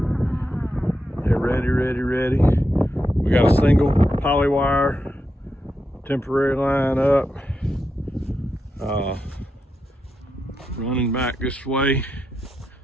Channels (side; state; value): both; normal; correlation 0.86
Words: They're ready. We got a single poly wire temporary line up. Running back this way.